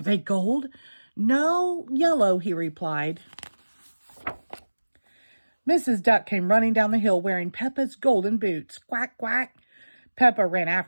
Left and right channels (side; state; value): both; inverted; correlation -1.00